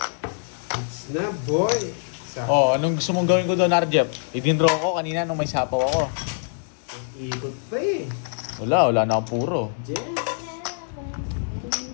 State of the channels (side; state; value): right; silent; 62 dB below the other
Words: It's na, boy! Oh, anong gusto mong gawin ko doon, Arjep? Idindraw ko kanina nung may sapaw ako. Ikot pa eh. Wala na akong puro. Jess.